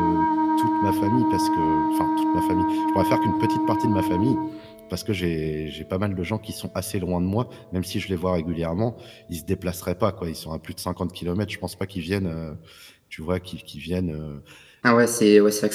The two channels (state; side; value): identical; both; correlation 1.00